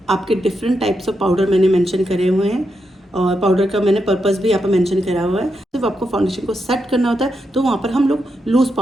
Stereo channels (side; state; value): both; normal; correlation 0.84